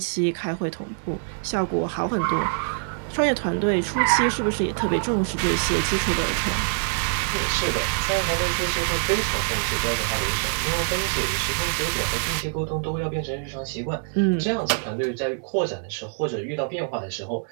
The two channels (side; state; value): left; silent; 62 dB below the other